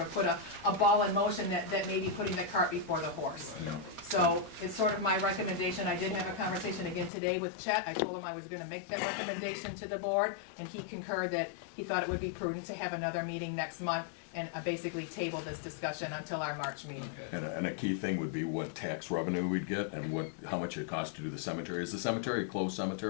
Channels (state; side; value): drops out; right; at 7.1 s